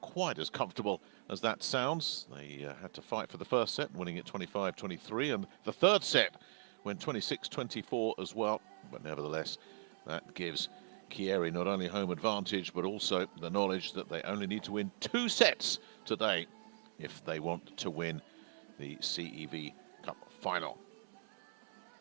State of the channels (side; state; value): left; silent; 51 dB below the other